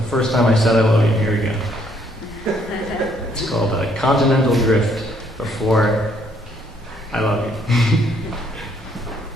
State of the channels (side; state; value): both; normal; correlation 0.68